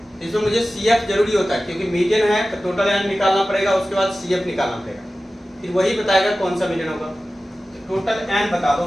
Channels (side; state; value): both; normal; correlation 0.95